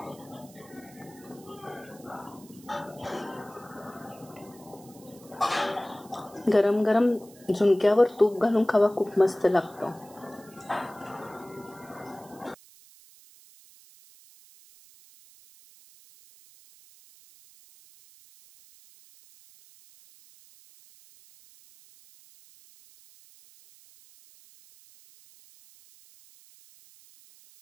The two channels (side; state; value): right; noise; hiss, 24 dB below the sound